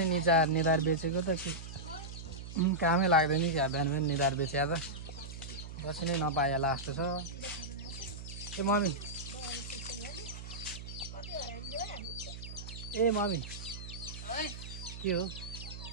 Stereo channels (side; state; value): right; noise; hum, 10 dB below the sound